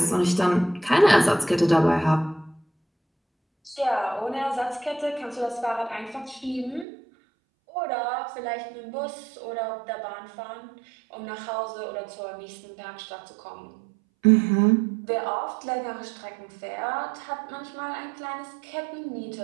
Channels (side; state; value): left; drops out; at 6.9 s